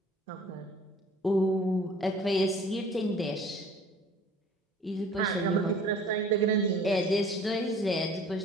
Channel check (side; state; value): both; normal; correlation 0.50